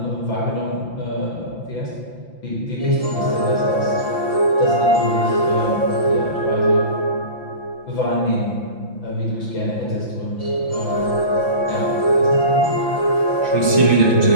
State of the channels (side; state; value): right; late; 5.9 ms